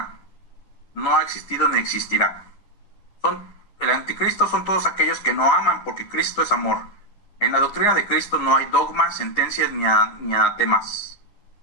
No ha existido ni existirá. El anticristo son todos aquellos que no aman, porque Cristo es amor. En la doctrina de Cristo no hay dogmas, sentencias ni anatemas.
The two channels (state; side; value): late; right; 10 ms